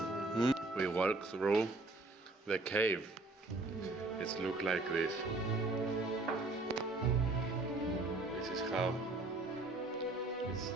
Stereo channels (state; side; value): quieter; left; 3.1 dB